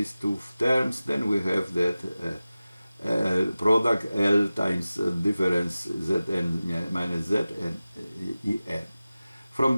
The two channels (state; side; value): inverted; both; correlation -0.96